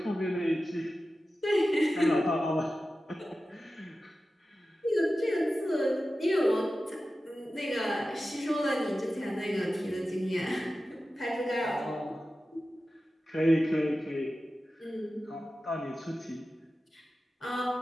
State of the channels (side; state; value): both; normal; correlation 0.94